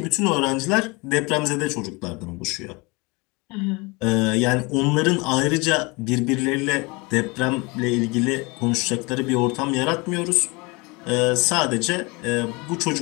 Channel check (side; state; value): right; quieter; 26.6 dB